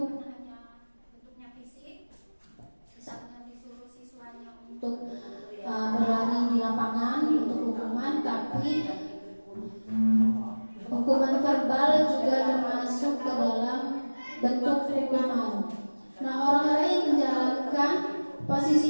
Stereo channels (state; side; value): inverted; both; correlation -1.00